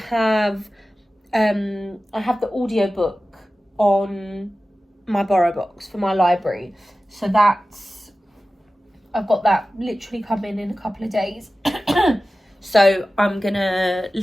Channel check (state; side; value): normal; both; correlation 0.95